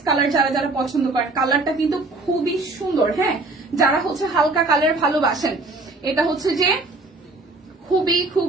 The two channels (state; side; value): quieter; left; 3.2 dB